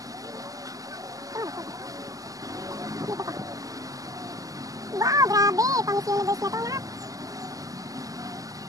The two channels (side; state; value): left; late; 0.17 ms